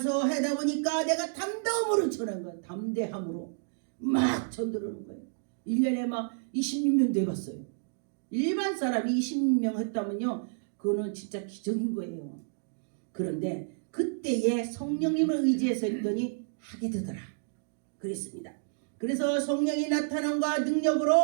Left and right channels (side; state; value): left; silent; digital silence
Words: 하다 보니까 내가 담대함으로 전한 거예요. 담대함으로 막 전도를 하는 거예요. 1년에 막 26명도 해봤어요. 일반 사람이 20명 했다면요 그거는 진짜 기적인 거예요. 그런데 그때에 성령님을 의지해서 했더니 하게 되더라 그랬습니다. 그래서 성령이 나타남과